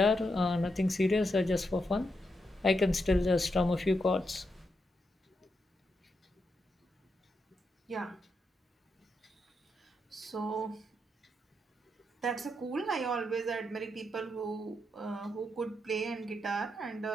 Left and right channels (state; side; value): normal; both; correlation 0.83